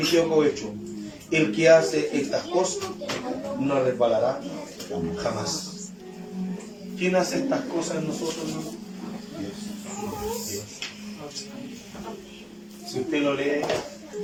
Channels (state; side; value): identical; both; correlation 1.00